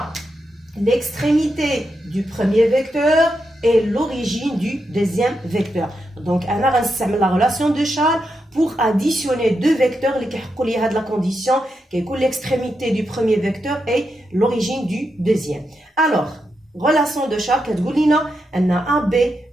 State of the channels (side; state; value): both; normal; correlation 0.85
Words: l'extrémité du premier vecteur et l'origine du deuxième vecteur. Donc, on a la relation de Charles pour additionner deux vecteurs qui ont la condition qui est l'extrémité du premier vecteur et l'origine du deuxième. Alors, relation de Charles, on a AB